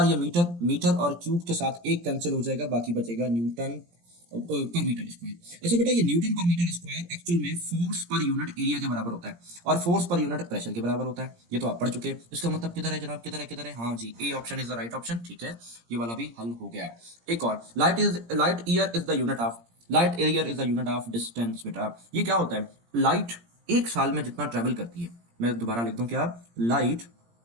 ये मीटर, मीटर और क्यूब के साथ एक कैंसिल हो जाएगा, बाकी बचेगा न्यूटन पर मीटर स्क्वायर। अच्छा बेटा, ये न्यूटन पर मीटर स्क्वायर एक्चुअल में फोर्स पर यूनिट एरिया के बराबर होता है और फोर्स पर यूनिट प्रेशर के बराबर होता है, ये तो आप पढ़ चुके हैं। इसका मतलब किधर है जनाब, किधर है, किधर है, हाँ जी, A option is the right option. ठीक है, ये वाला भी हल हो गया। एक और, light year is the unit of, light year is the unit of distance. बेटा ये क्या होता है, लाइट एक साल में जितना ट्रेवल करती है, मैं दोबारा लिख दूं क्या, लाइट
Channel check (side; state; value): left; late; 17 ms